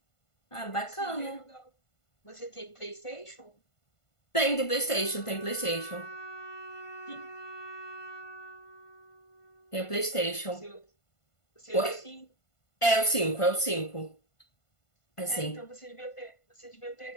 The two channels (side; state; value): right; late; 1.5 ms